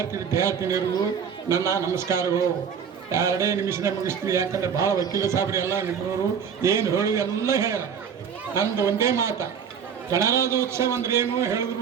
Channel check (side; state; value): left; quieter; 7.2 dB